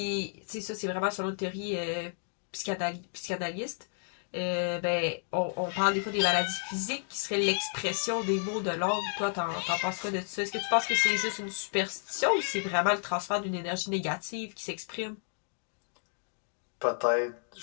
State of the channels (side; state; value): right; silent; digital silence